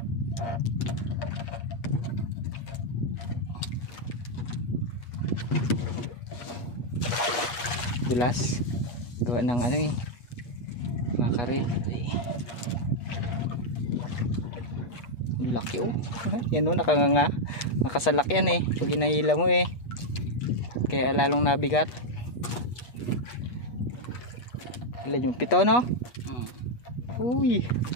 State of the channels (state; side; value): late; right; 8.3 ms